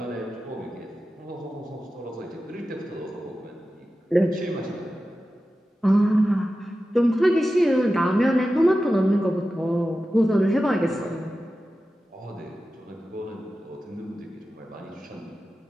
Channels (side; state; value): both; normal; correlation 0.93